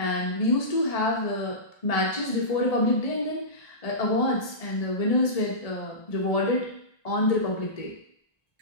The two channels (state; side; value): late; right; 1.7 ms